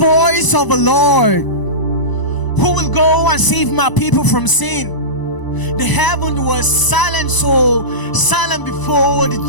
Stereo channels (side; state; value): right; late; 1.0 ms